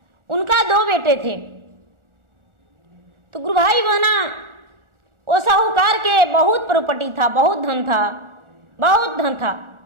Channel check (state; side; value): late; left; 1.4 ms